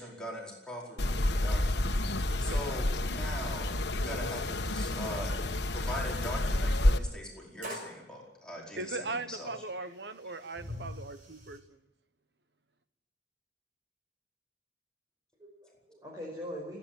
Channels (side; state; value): both; normal; correlation 0.71